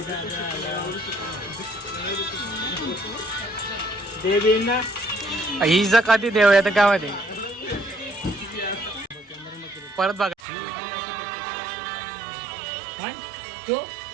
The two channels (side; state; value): left; drops out; at 10.4 s